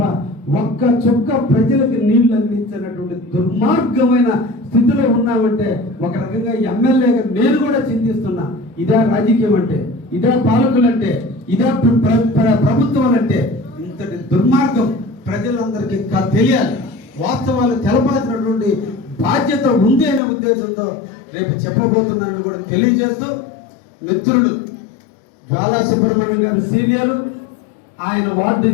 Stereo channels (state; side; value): drops out; right; at 20.2 s